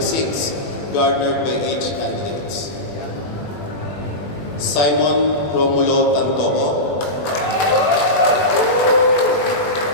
garnered by each candidates. Simon Romulo Tantoco.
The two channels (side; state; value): right; late; 21 ms